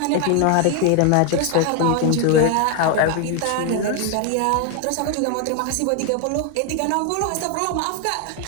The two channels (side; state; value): both; different; correlation 0.01